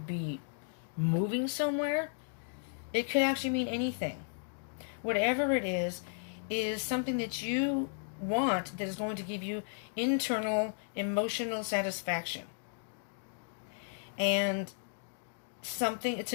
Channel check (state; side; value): silent; right; digital silence